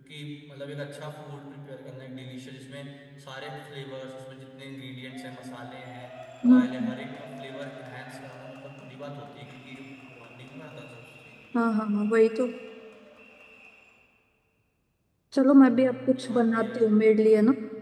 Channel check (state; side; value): identical; both; correlation 1.00